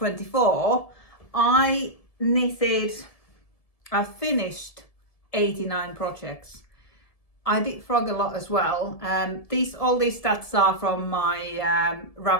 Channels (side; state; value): right; late; 1.7 ms